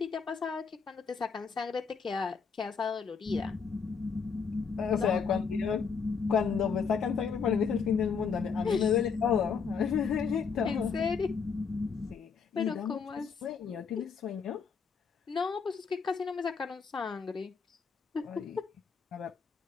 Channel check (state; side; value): quieter; right; 5.8 dB